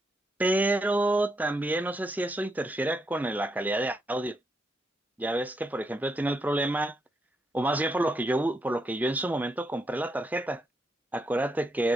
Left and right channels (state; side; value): normal; both; correlation 0.79